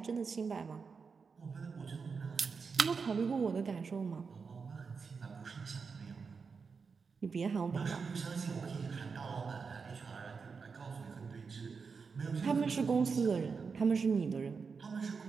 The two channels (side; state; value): left; quieter; 5.3 dB